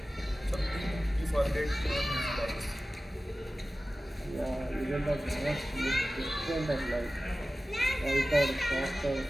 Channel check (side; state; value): both; normal; correlation 0.96